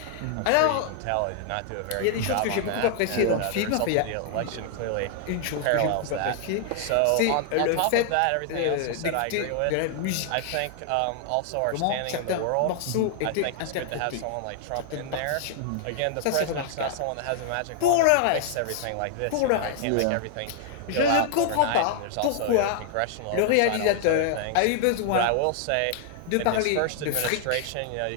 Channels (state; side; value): different; both; correlation 0.00